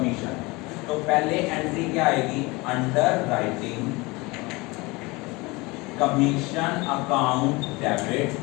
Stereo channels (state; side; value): quieter; right; 24.1 dB